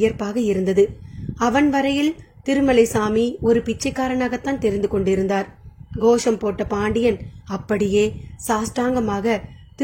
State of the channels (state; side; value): identical; both; correlation 1.00